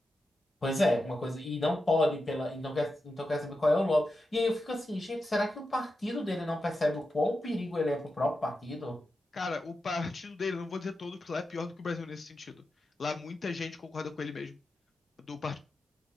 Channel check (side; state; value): both; normal; correlation 0.89